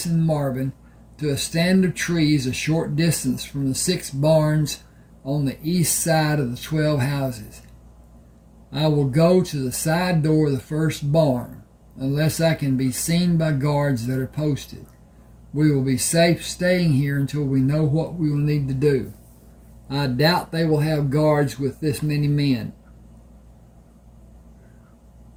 and Marvin, to a stand of trees a short distance from the 6 barns on the east side of the 12 houses. I will go to the side door of the first barn, unless I can be seen by guards that are posted. We will be safe staying here until we know what we will need to do. I doubt they will have guards with this many men.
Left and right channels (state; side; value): identical; both; correlation 1.00